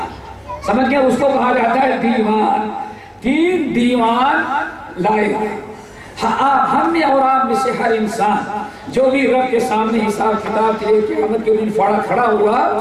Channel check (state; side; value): identical; both; correlation 1.00